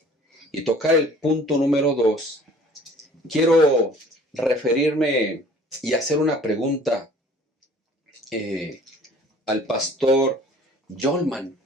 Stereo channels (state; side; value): normal; both; correlation 0.51